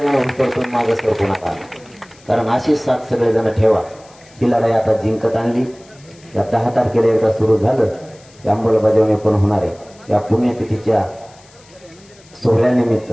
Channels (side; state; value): left; noise; hiss, 27 dB below the sound